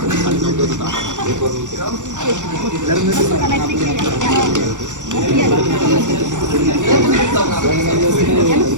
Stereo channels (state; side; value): late; left; 0.85 ms